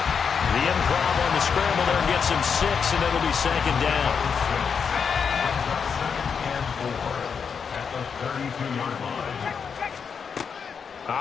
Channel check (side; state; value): right; quieter; 6.4 dB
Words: improv on the scramble there gets him 6, and it'll be 2nd down. 32-yard line.